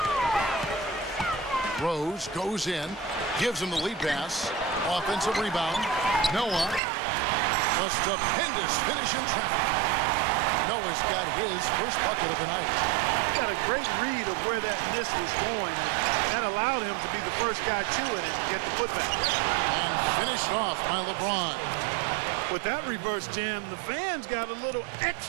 Rose goes in, gives him the lead pass. Offensive rebound. Noah. A stupendous finish in traffic. Noah's got his first bucket of the night. Got a great read of where that miss was going. That allowed him to be the first guy to it and get the putback. And finished off by LeBron. With that reverse jam, the fans got a little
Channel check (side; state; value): left; drops out; at 6.8 s